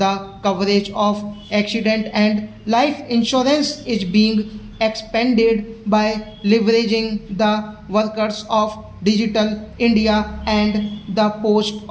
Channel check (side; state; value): both; identical; correlation 1.00